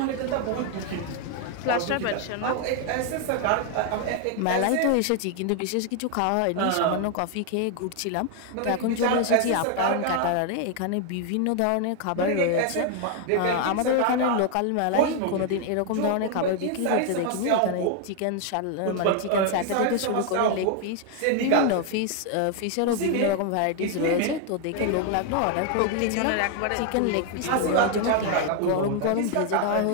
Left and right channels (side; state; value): both; different; correlation 0.00